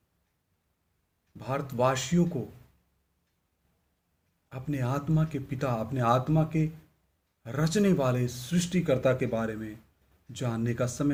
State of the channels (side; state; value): both; identical; correlation 1.00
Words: भारतवासियों को अपने आत्मा के पिता, अपने आत्मा के रचने वाले सृष्टिकर्ता के बारे में जानने का समय